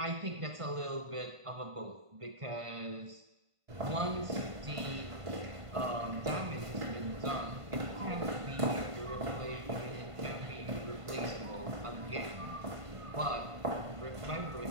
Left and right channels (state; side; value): late; left; 1.5 ms